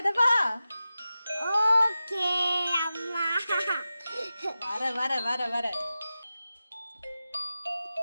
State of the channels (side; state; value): both; inverted; correlation -0.93